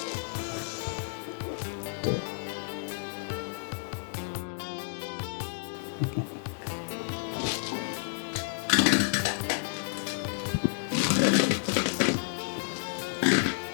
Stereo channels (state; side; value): silent; right; digital silence